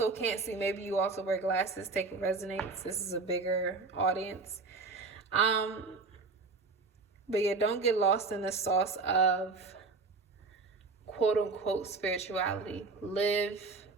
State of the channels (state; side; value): quieter; left; 4.1 dB